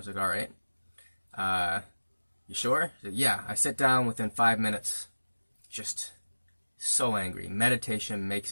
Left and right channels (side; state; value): both; inverted; correlation -1.00